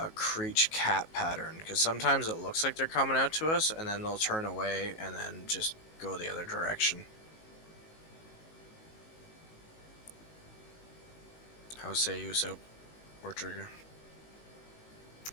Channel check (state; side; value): late; right; 19 ms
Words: creech cat pattern. Because sometimes it looks like they're coming out to us, and then they'll turn away and then just go the other direction. How say you, Soap? Or Trigger?